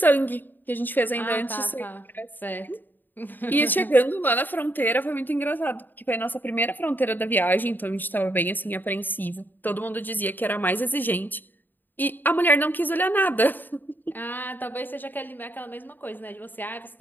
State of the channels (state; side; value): late; right; 0.090 ms